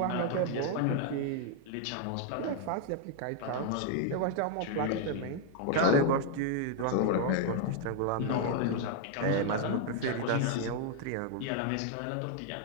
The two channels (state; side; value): different; both; correlation 0.00